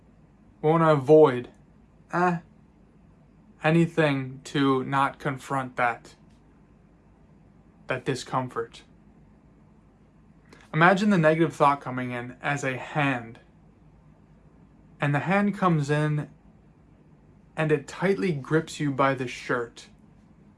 We want to avoid anything to not confront that discomfort. Imagine the negative thought coming in as a hand. And the hand comes in and it tightly grips you by the shirt.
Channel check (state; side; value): identical; both; correlation 1.00